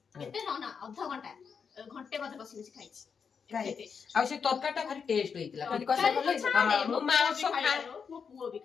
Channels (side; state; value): right; quieter; 6.2 dB